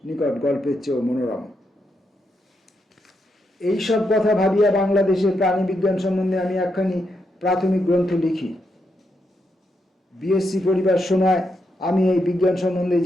নিকট গল্পের চেয়েও মনোরম। এইসব কথা ভাবিয়া বাংলাদেশের প্রাণী বিজ্ঞান সম্বন্ধে আমি একখানি প্রাথমিক গ্রন্থ লিখি। বিএসসি পড়িবার সময় আমি এই বিজ্ঞান সম্বন্ধে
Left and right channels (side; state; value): both; normal; correlation 0.82